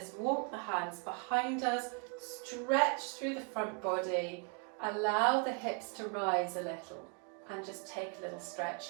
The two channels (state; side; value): quieter; left; 37.7 dB